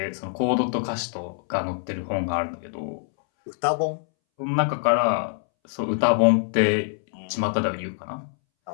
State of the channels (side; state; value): right; silent; 62 dB below the other